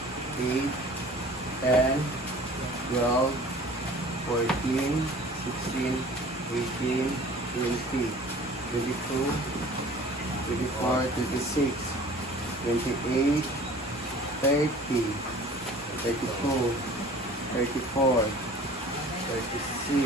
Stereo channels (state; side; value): normal; both; correlation 0.46